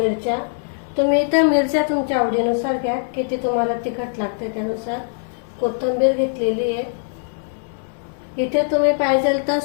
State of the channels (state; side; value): silent; right; digital silence